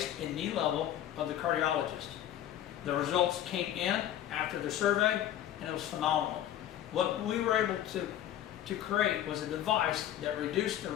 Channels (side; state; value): right; quieter; 11.6 dB